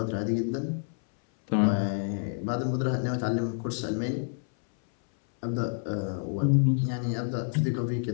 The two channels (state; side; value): silent; right; 59 dB below the other